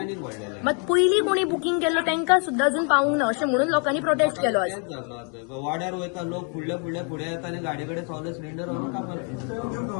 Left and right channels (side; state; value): right; quieter; 38.3 dB